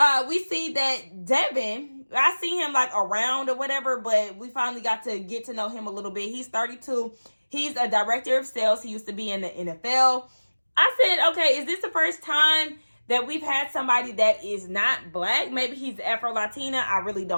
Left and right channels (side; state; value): both; inverted; correlation -1.00